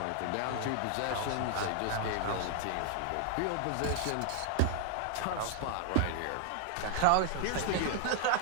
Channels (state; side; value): different; both; correlation 0.00